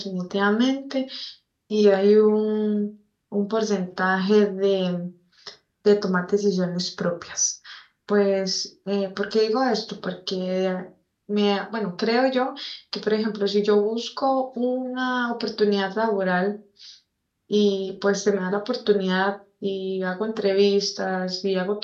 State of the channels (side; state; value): both; identical; correlation 1.00